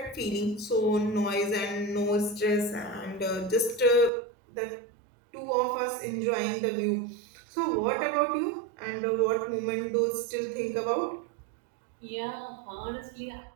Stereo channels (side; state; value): left; drops out; at 4.1 s